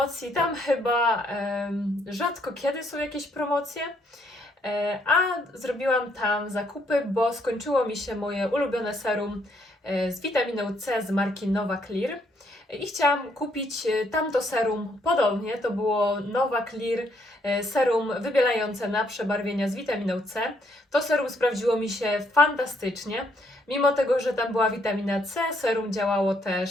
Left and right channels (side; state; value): both; normal; correlation 0.71